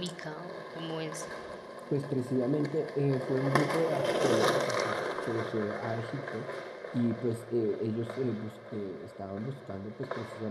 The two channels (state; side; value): identical; both; correlation 1.00